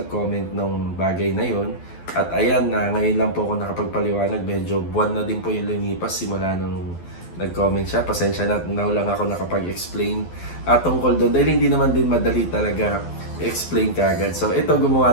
nung bagay na yon. At ayan, ngayon lang po ako nakapagpaliwanag. Medyo buwan na din po yung lumipas simula nung nag-comment siya. Pasensya na, now lang ako nakapag-explain tungkol doon. Dahil hindi naman din madali talaga i-explain kagad. So ito,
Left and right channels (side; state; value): right; late; 12 ms